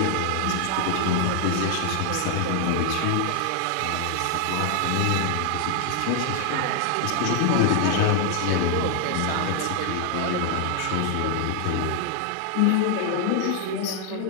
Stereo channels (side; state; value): both; different; correlation 0.00